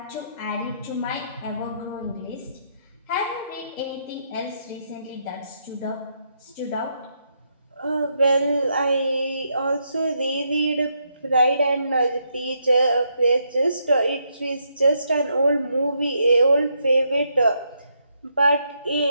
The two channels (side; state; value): both; inverted; correlation -0.77